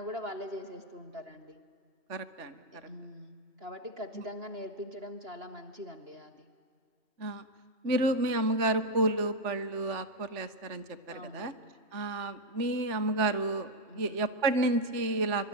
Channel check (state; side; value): late; left; 3.4 ms